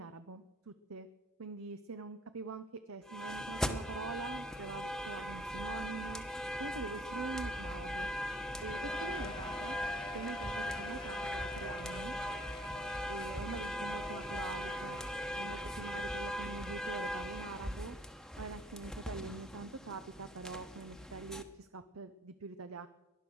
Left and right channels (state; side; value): normal; both; correlation 0.62